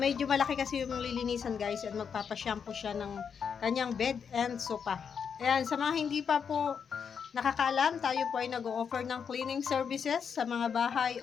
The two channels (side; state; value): right; quieter; 6.8 dB